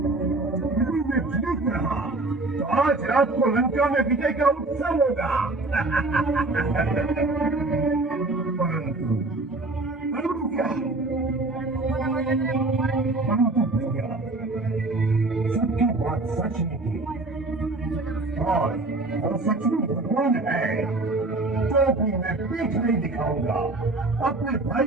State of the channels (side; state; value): left; quieter; 3.1 dB